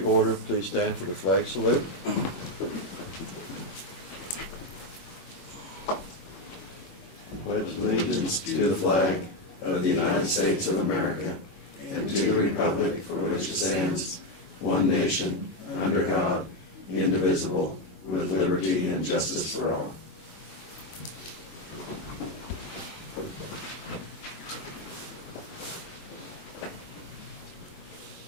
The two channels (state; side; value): late; right; 22 ms